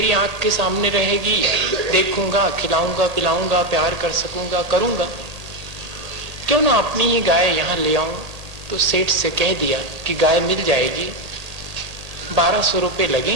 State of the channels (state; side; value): late; left; 1.8 ms